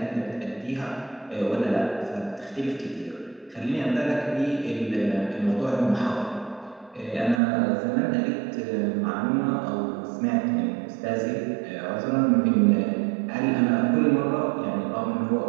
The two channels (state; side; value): drops out; left; at 7.4 s